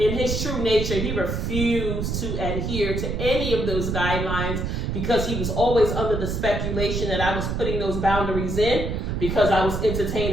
his true nature, he refused to adhere to any of those guidelines because he was always under the speculation that I was putting those boundaries in because I was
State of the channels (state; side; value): noise; right; rumble, 2 dB below the sound